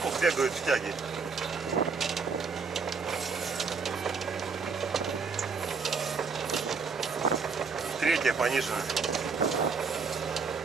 Ну, бегают в тяге. Третья понижена.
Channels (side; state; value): left; quieter; 5.0 dB